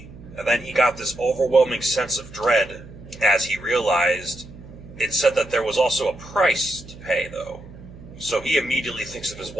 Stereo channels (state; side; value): noise; right; hum, 17 dB below the sound